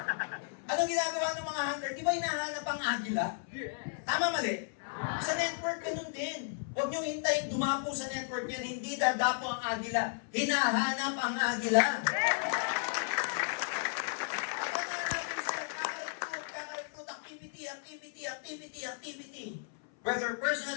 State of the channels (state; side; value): silent; right; 55 dB below the other